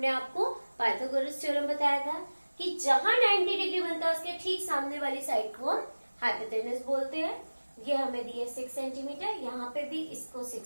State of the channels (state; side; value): inverted; both; correlation -1.00